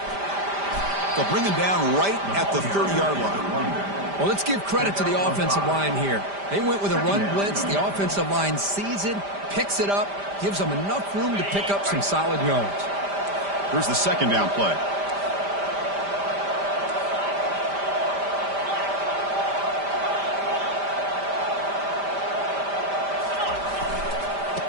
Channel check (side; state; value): left; late; 5.0 ms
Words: They'll bring him down right at the 30-yard line. Well, let's give credit to the offensive line here. They went with a run blitz. The offensive line sees it, picks it up, gives them enough room to pick up some solid yards. Here's the second down play.